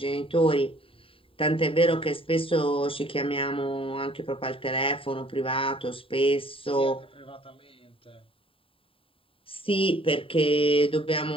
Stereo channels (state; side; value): late; right; 0.26 ms